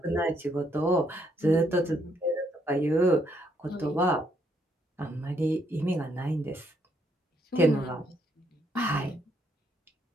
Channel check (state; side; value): normal; both; correlation 0.73